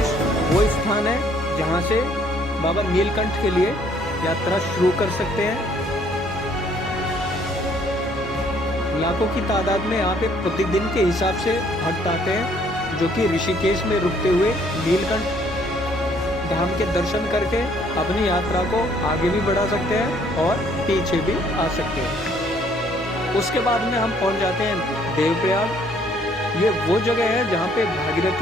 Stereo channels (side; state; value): both; normal; correlation 0.63